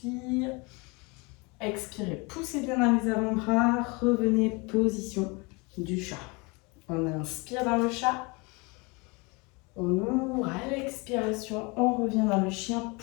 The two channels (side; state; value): right; quieter; 28.1 dB